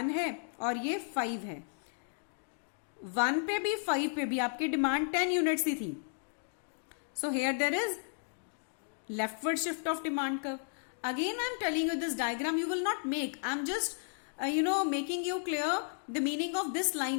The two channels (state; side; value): silent; right; digital silence